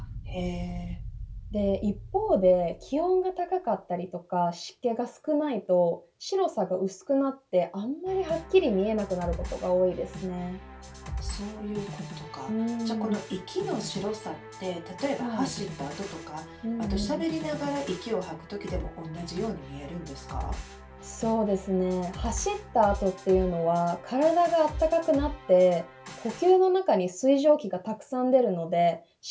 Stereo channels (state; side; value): identical; both; correlation 1.00